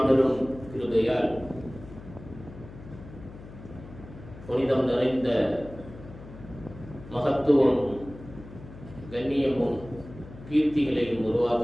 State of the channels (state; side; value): noise; left; hum, 16 dB below the sound